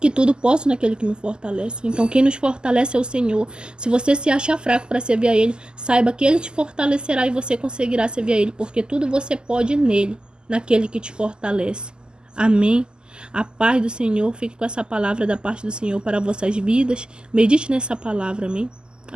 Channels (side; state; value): left; late; 0.047 ms